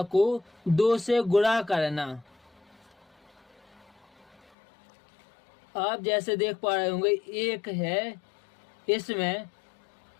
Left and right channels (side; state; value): right; drops out; at 4.4 s